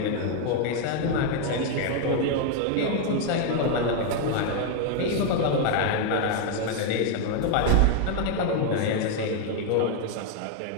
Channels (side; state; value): both; different; correlation 0.00